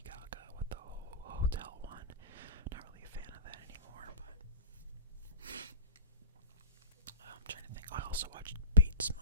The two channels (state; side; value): inverted; both; correlation -0.34